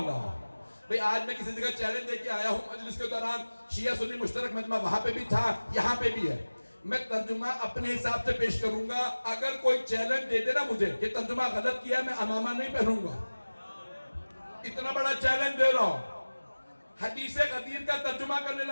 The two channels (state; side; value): inverted; both; correlation -1.00